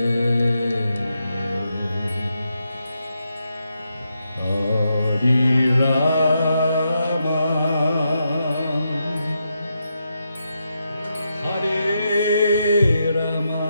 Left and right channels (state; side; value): inverted; both; correlation -0.83